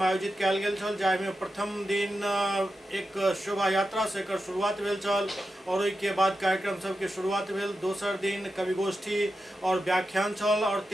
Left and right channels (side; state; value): both; normal; correlation 0.89